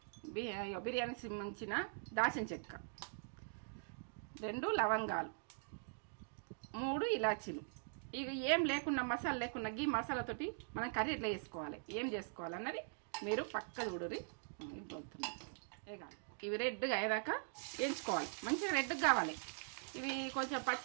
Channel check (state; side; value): silent; left; digital silence